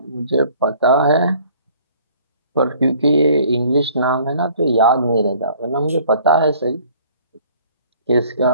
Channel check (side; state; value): both; inverted; correlation -0.55